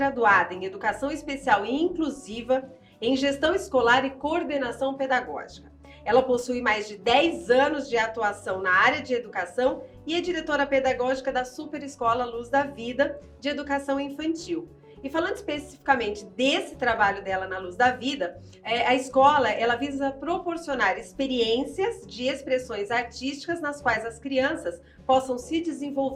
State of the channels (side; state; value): both; identical; correlation 1.00